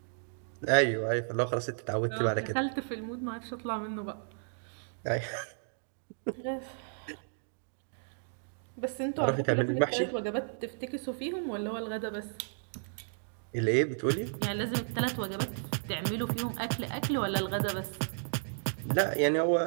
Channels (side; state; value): left; silent; digital silence